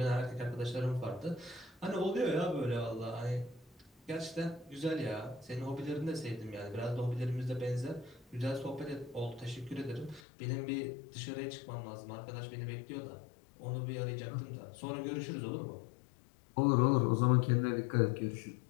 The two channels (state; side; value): drops out; right; at 10.2 s